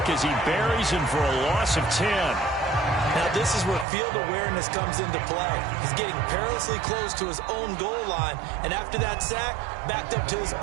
as he buries him for a loss of 10. Now this is where field awareness comes into play. He's getting perilously close to his own goal line, and after that sack, backed up to his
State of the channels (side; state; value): left; drops out; at 3.9 s